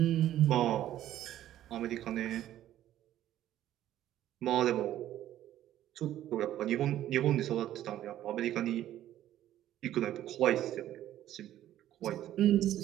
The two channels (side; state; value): left; quieter; 12.7 dB